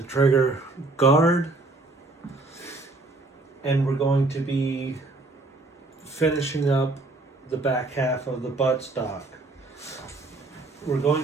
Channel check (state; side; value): quieter; left; 3.1 dB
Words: trigger guard, and we're going to be finishing up the back half of the buttstock. We're